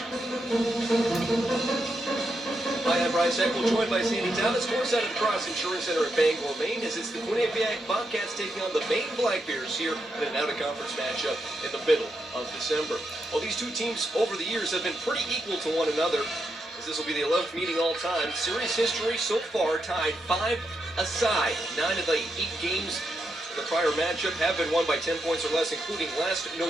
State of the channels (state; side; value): normal; both; correlation 0.84